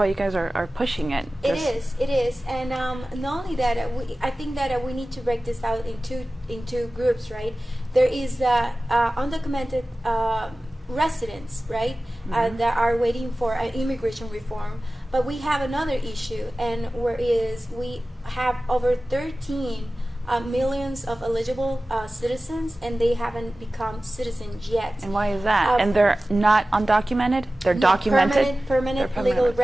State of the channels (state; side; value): normal; both; correlation 0.96